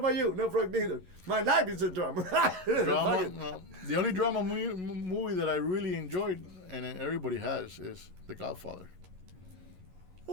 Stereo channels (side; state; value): left; late; 11 ms